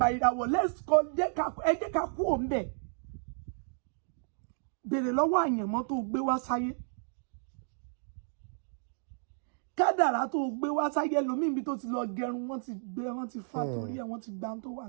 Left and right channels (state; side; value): silent; left; digital silence